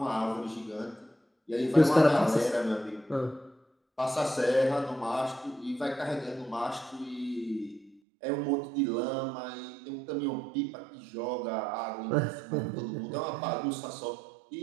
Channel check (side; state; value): left; drops out; at 8.0 s